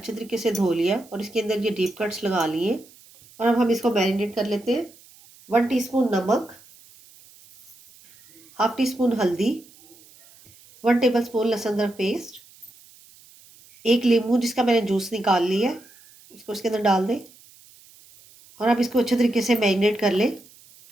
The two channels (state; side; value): noise; right; hiss, 25 dB below the sound